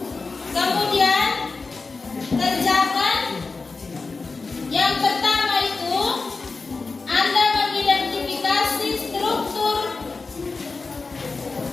kemudian kerjakan yang pertama itu Anda mengidentifikasi struktur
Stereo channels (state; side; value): quieter; right; 4.1 dB